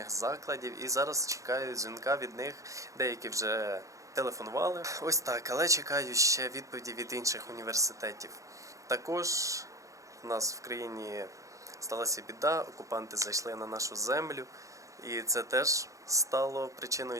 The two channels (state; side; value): late; left; 0.16 ms